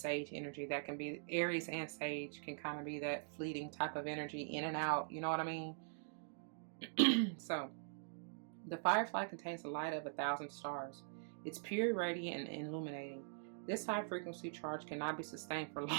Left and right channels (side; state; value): left; silent; digital silence